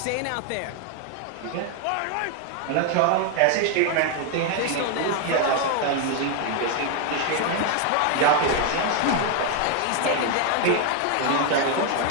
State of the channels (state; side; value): different; both; correlation 0.01